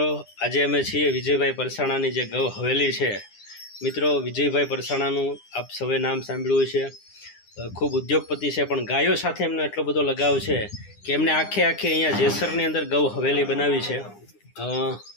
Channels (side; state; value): right; late; 9.9 ms